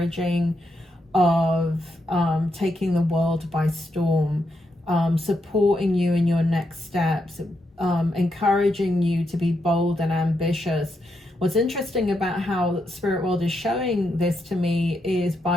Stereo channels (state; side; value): normal; both; correlation 0.82